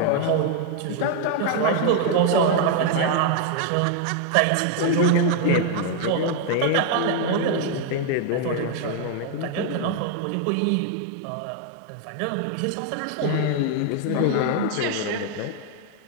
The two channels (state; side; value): different; both; correlation 0.00